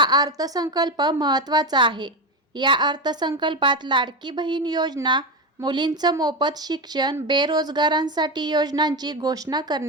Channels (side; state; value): both; normal; correlation 0.15